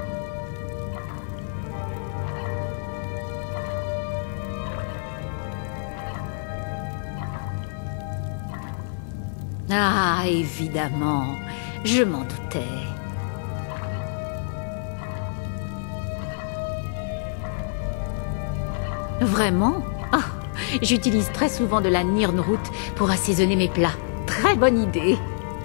Ah, évidemment. Je m'en doutais. Vraiment? Ah, j'utilise très souvent de la Nirnroot pour assaisonner mes plats. Très bonne idée.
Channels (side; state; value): right; silent; 57 dB below the other